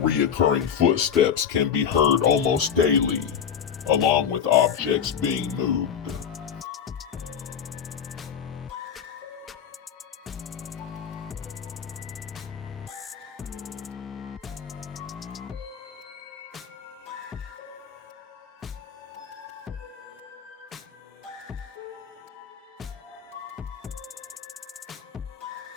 reoccurring footsteps can be heard almost daily, along with objects being moved.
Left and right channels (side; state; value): right; quieter; 7.8 dB